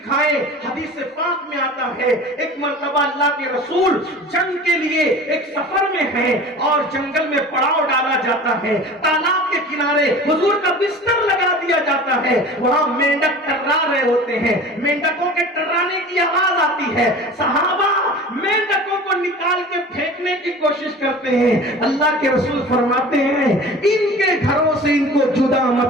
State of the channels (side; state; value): both; normal; correlation 0.39